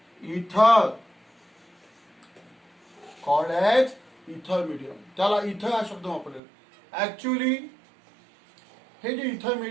इथर, कॉल्ड एज इथर मीडियम. त्याला इथर हा शब्द वापरलेला. ऍक्च्युअली हे जे इथर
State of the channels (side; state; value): left; drops out; at 6.4 s